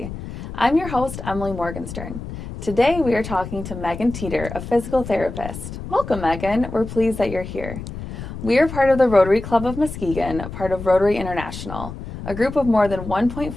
I'm your host, Emily Morgenstern. Today we are talking to Megan Teeter, a physical therapist. Welcome, Megan. We're pleased that you're here. We are part of the Rotary Club of Muskegon, part of Rotary International, a group of more than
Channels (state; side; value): noise; left; rumble, 10 dB below the sound